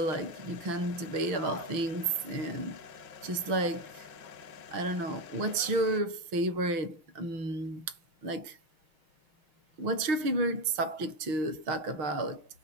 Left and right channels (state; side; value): late; left; 5.9 ms